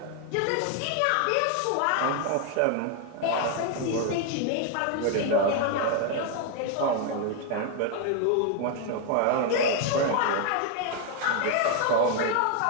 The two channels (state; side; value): different; both; correlation 0.01